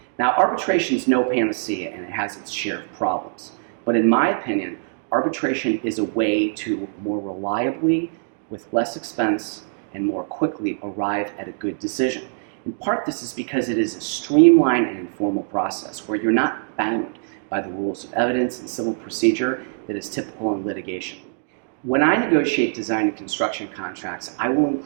Now, arbitration is no panacea and it has its share of problems. But in my opinion, arbitration is a way to more reliably, with less expense, and more quickly arrive at a good decision. In part, this is because it is a streamlined and informal process where you're not bound by the rules of evidence and civil procedure that is typical in litigation. When I negotiate design and construction contracts, I will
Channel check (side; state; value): left; silent; digital silence